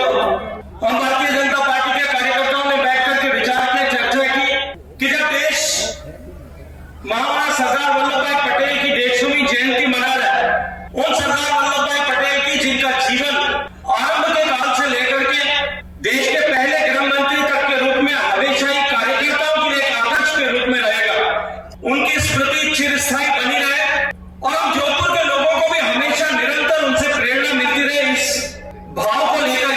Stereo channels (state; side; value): identical; both; correlation 1.00